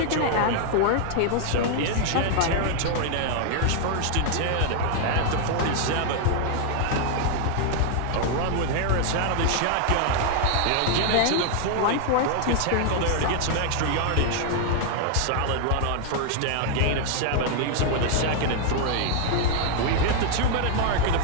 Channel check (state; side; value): different; both; correlation 0.00